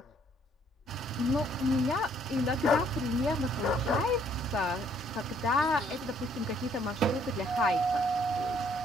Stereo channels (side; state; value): both; normal; correlation 0.65